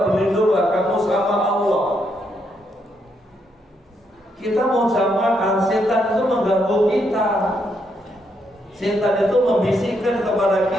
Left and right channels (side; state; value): both; normal; correlation 0.77